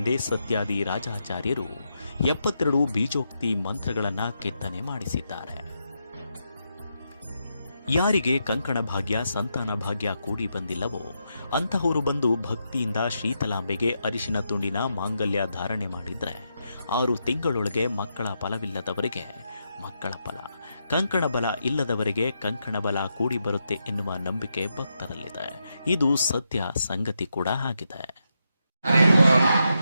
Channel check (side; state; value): both; inverted; correlation -0.83